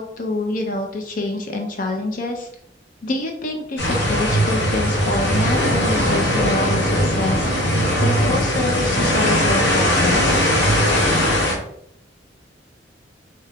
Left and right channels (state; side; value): normal; both; correlation 0.40